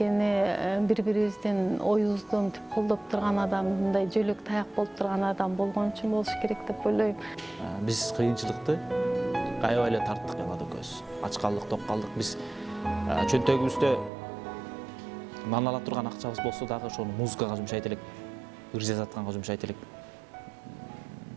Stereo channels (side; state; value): left; drops out; at 14.1 s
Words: бири-бирибиздин оюбузду мынтип колдоп турган адам, мындай жөлөк таяк болуп турган адам болгон үчүн болуш керек деп ойлойм. Биз кыйынчылыкты аябай эле тарттык Эллада экөөбүз. Ач калдык, ток калдык. Биз чөнтөгүбүздө нан ала турган акчабыз болсо дагы ошону музыкага жумшайт элек, ыр жазатканга жумшайт элек.